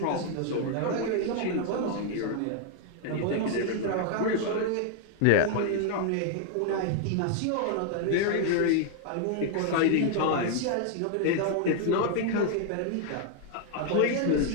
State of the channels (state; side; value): different; both; correlation 0.00